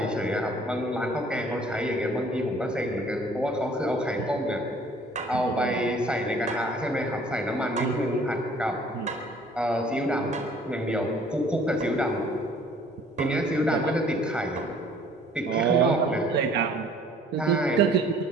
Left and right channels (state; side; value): normal; both; correlation 0.55